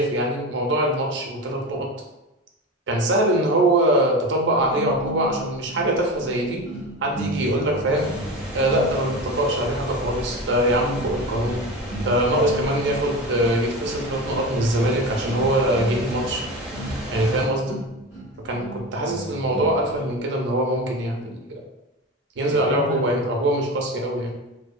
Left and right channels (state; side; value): normal; both; correlation 0.26